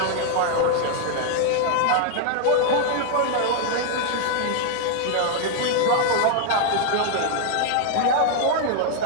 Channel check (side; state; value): both; different; correlation 0.00